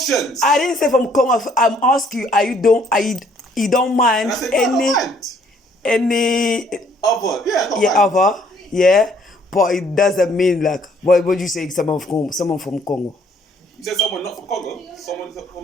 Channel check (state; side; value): normal; both; correlation 0.63